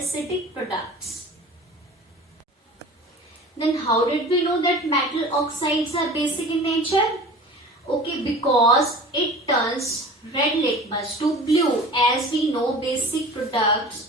products. Then how did we know that metal oxides are basic in nature? Okay, because it turns red litmus to blue. As we know, basic products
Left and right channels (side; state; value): both; normal; correlation 0.39